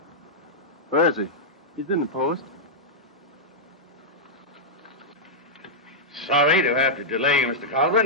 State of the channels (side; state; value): both; normal; correlation -0.09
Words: Where is he? He's in the post. Sorry to have to delay you, Mr.